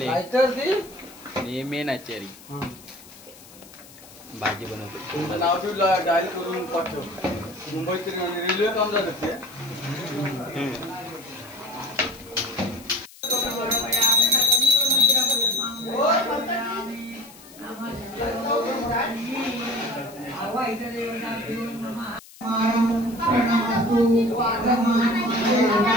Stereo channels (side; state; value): left; noise; hiss, 21 dB below the sound